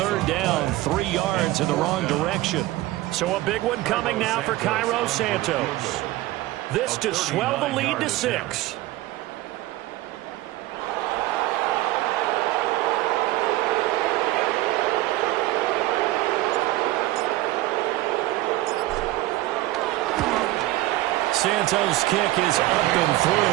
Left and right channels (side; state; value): left; quieter; 17.1 dB